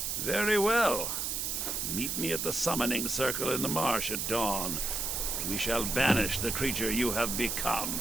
Very well. Meet me at the summoning circle in the marsh at dawn. We shall banish the creature you have become.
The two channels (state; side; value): noise; right; hiss, 1 dB below the sound